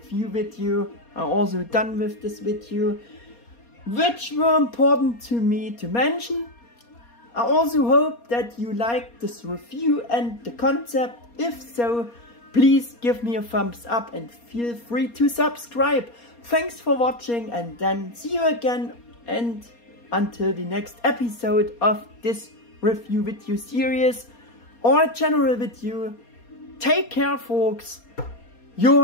video are also done with this video, which were important to me to mention. I also hope that you liked this review and the concept. If so, please give me a thumbs up and feel free to subscribe. Thanks for watching, and then see you again, and until the next episode of this review video series or general video. Take care, folks.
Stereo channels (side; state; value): right; late; 4.2 ms